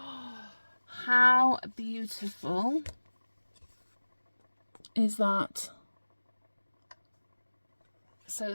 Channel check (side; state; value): both; inverted; correlation -1.00